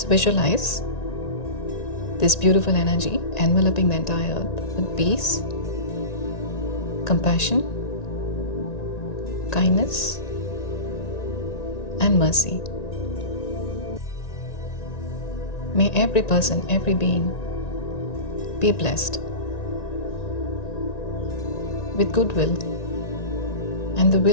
visualize this beautiful energy enveloping the entire earth with peace, compassion, kindness, and mercy. May every person, every being be blessed with goodwill and the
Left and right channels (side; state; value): right; late; 1.9 ms